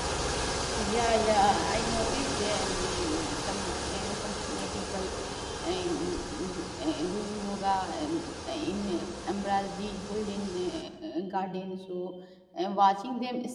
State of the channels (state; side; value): identical; both; correlation 1.00